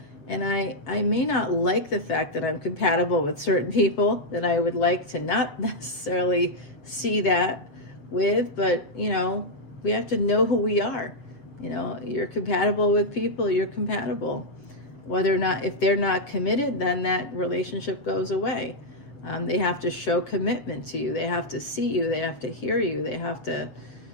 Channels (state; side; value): late; right; 7.3 ms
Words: And I may not like the fact that I'm compatible with certain people that I would like to not necessarily see that with, but we have to know who we are. You're compatible with people, you're compatible. Whether or not, if they're not committed, then that relationship goes away. They have to show commitment to you. They have to see you. They have to hear you. They have to